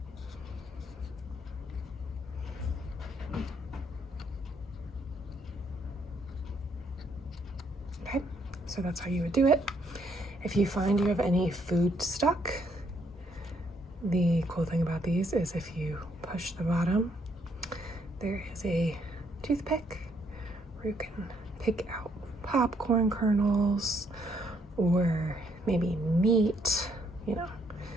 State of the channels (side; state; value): both; normal; correlation 0.71